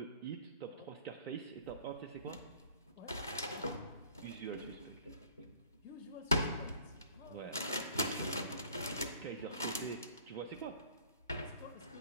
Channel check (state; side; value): inverted; both; correlation -0.52